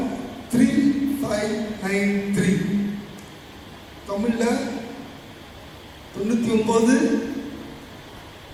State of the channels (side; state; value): both; identical; correlation 1.00